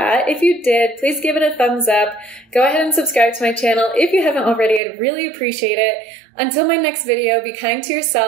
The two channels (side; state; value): left; drops out; at 4.8 s